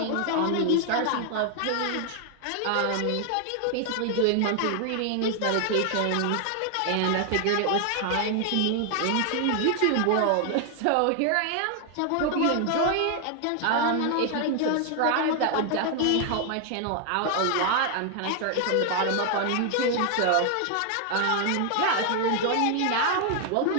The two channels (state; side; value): different; both; correlation 0.00